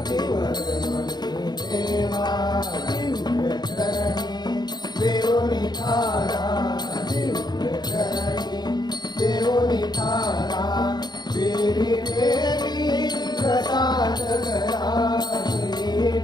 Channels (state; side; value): late; right; 0.20 ms